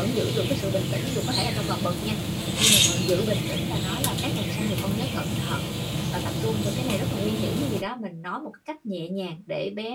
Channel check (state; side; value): identical; both; correlation 1.00